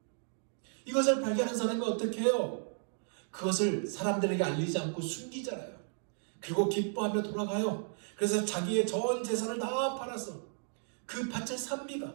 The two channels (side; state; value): left; silent; 55 dB below the other